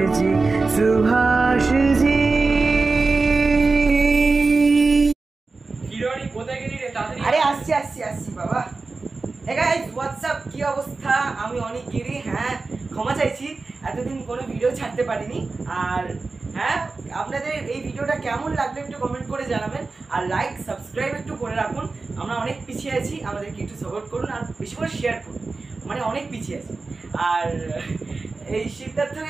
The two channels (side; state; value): left; quieter; 3.8 dB